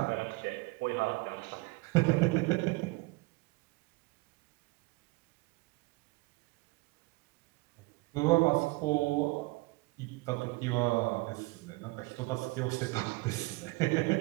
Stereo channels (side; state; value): left; quieter; 24.3 dB